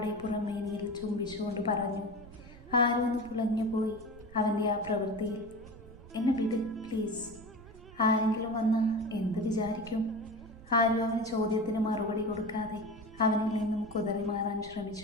പുറമേനിയിൽ ചുംബിച്ചുകൊണ്ട് പറഞ്ഞു. ആരു ഒന്ന് പുളഞ്ഞു പോയി അവൻ്റെ ആ പ്രവൃത്തിയിൽ. എന്നെ വിട് പ്ലീസ്. ആരെങ്കിലും വന്നാൽ എന്ത് വിചാരിക്കും? ആരു അവന് ചോദ്യത്തിന് മറുപടി കൊടുക്കാതെ അവനിൽ നിന്നും കുതറി മാറാൻ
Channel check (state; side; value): noise; right; rumble, 19 dB below the sound